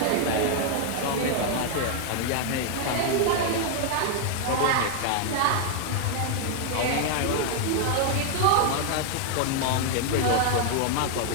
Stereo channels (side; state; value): both; different; correlation 0.00